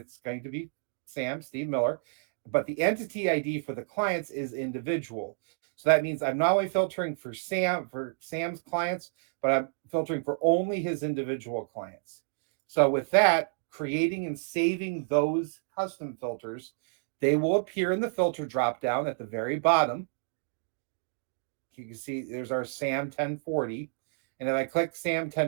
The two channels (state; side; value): silent; left; digital silence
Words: going to be Sam, Steve Miller, but the entity ID for the clients is individual. So that means I'm not only filtering for Sam's clients, but I'm filtering for only his individual clients. So with that, creating and saving those custom filters, they will appear in the filter dropdown at the very bottom. You can see there's our Sam 1040. And if I click Sam